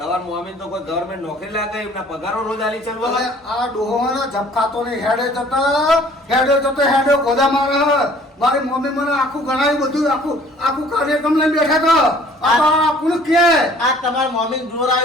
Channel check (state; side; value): normal; both; correlation 0.54